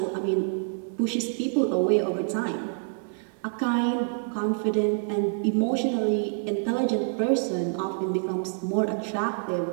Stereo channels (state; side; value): silent; left; 60 dB below the other